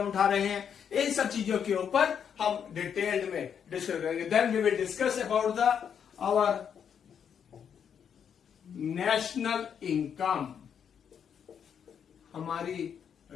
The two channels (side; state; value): right; quieter; 7.8 dB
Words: उठा रहे हैं, इन सब चीजों के ऊपर हम डिटेल्ड में डिस्कस करेंगे। Then we will discuss about the our national income, हमारी